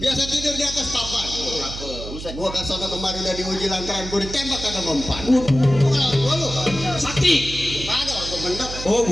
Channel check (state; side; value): noise; right; hum, 10 dB below the sound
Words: Biasa tidur di atas papan. Gua ke sono kemarin udah diuji lantaran gue ditembak kagak mempan. Gua lu Sakti. kagak gua bener. Oh,